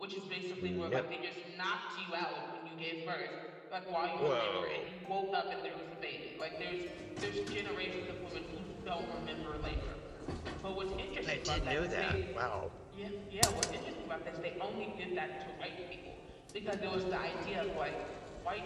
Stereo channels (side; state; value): both; identical; correlation 1.00